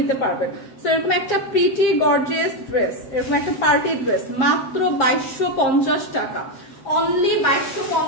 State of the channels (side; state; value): right; late; 7.5 ms